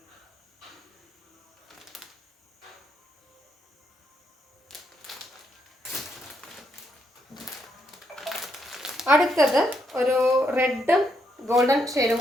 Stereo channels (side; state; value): both; normal; correlation 0.77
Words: അടുത്തത് ഒരു റെഡും ഗോൾഡൻ ഷെയ്ഡും